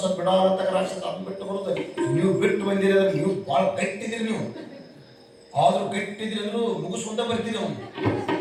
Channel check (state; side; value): identical; both; correlation 1.00